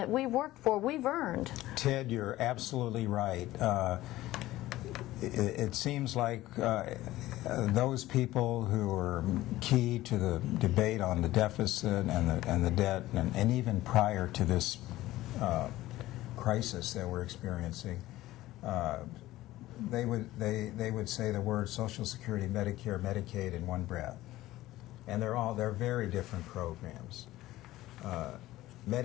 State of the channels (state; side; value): quieter; right; 16.4 dB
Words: we worked for, we've earned? Ted, you're absolutely right. It seems like those people who are key to the debate on the deficit and the debt, and even prior to this crisis that we're experiencing, they would say the words Social Security, Medicare, Medicaid in one breath, and they're very different programs.